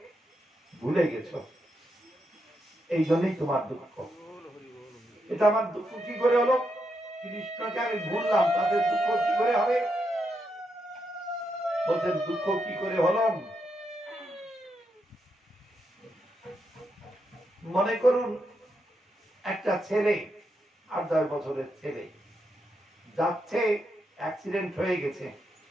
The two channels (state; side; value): normal; both; correlation 0.82